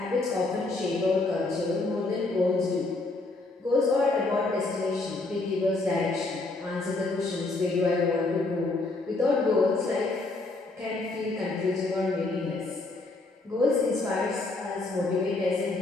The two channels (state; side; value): quieter; right; 3.2 dB